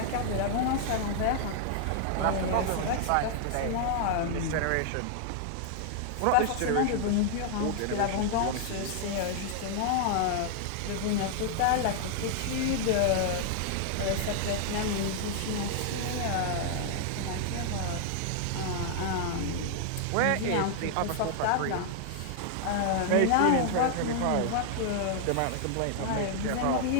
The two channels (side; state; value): both; different; correlation 0.00